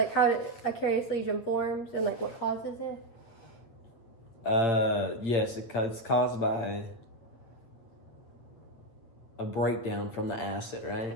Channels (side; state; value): right; late; 8.7 ms